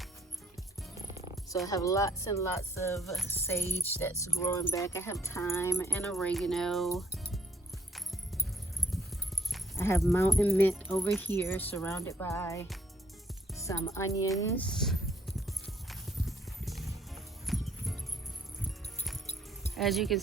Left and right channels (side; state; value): both; normal; correlation 0.66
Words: So I have lots and lots of sage that's growing back. I have thyme and oregano. I have mountain mint over here surrounded by some onions. As you can